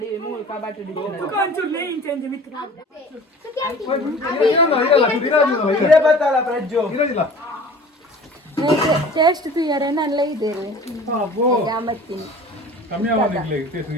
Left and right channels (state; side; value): normal; both; correlation 0.44